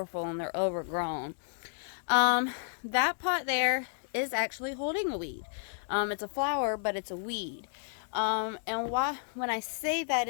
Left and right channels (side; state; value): right; silent; 57 dB below the other